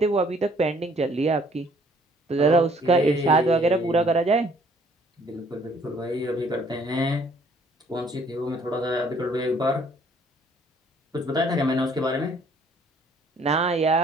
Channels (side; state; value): both; normal; correlation 0.61